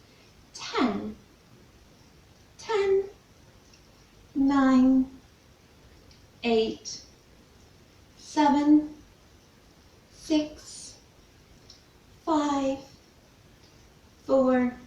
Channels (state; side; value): identical; both; correlation 1.00